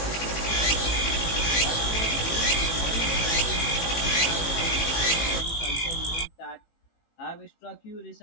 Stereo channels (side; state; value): right; late; 18 ms